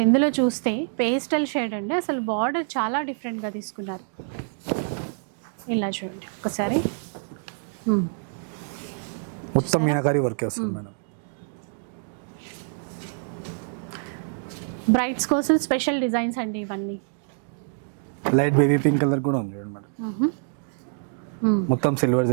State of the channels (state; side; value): silent; left; 61 dB below the other